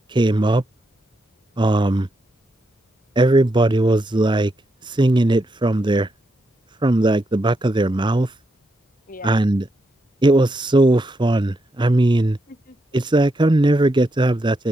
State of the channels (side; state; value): both; normal; correlation 0.82